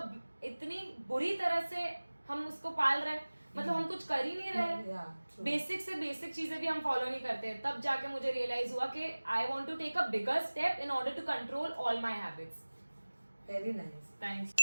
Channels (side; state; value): both; inverted; correlation -1.00